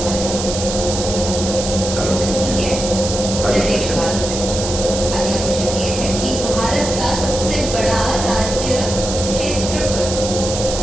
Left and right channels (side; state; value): right; noise; hiss, 6 dB below the sound